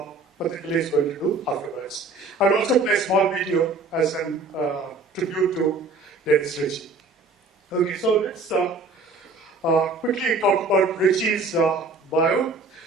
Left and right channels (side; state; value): left; quieter; 3.5 dB